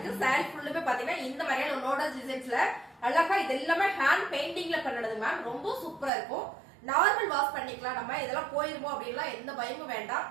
சாரி ஃபுல்லுமே பாத்தீங்கன்னா இந்த மாதிரியான லோட்டஸ் டிசைன்ஸ்ல அழகா இது எல்லாமே ஹேண்ட் பெயிண்டிங்ல பண்ணது மேம். ரொம்ப சூப்பரா இருக்கும். நார்மல் வாஷ் பண்ணிக்கலாம். நம்ம இதெல்லாம் போயிருமோ அப்படின்லாம் எந்த பயமும் வேண்டாம்.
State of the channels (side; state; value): left; drops out; at 6.1 s